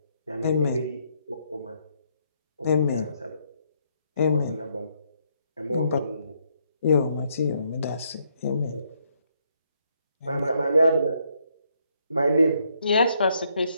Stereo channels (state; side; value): inverted; both; correlation -0.73